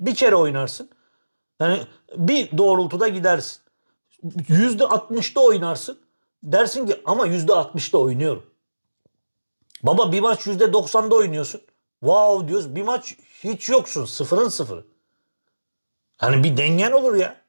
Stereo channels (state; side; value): inverted; both; correlation -1.00